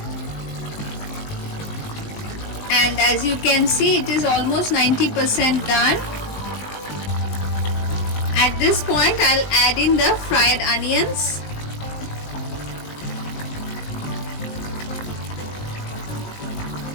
And as you can see, it is almost 90% done. At this point, I'll add in the fried onions.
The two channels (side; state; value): right; late; 19 ms